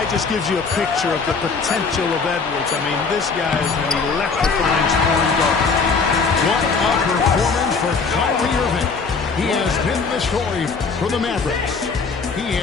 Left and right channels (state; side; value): quieter; right; 4.8 dB